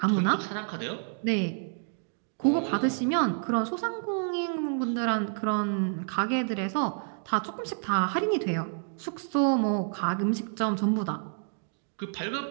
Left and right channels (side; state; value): left; silent; digital silence